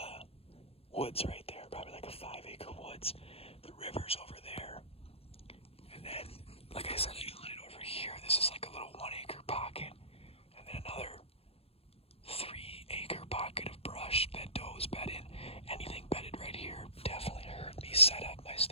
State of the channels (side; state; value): right; late; 0.28 ms